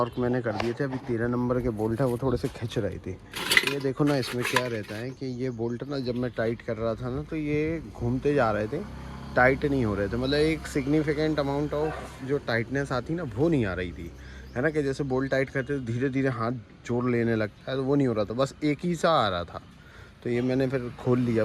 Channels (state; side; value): identical; both; correlation 1.00